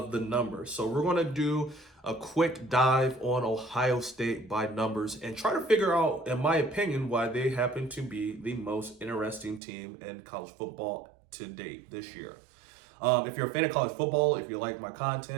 the numbers. So we're going to do a quick dive on Ohio State by numbers and try to figure out, in my opinion, why they happen to be the most interesting team in college football to date this year. If you're a fan of college football, if you like my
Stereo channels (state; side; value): drops out; left; at 9.6 s